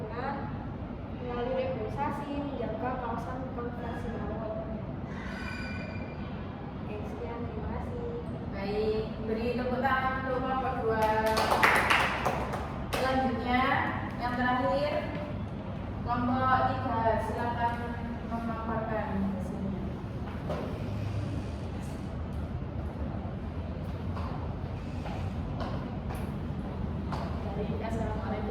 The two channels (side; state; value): both; identical; correlation 1.00